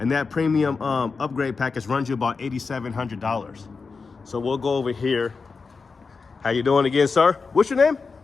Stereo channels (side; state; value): right; quieter; 4.7 dB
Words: that premium upgrade package runs you about $8,700. So we'll go over here. How you doing again, sir? What's your name?